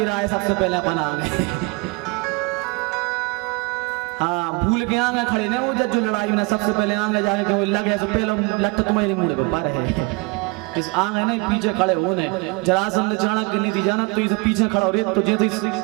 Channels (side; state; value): left; quieter; 28.1 dB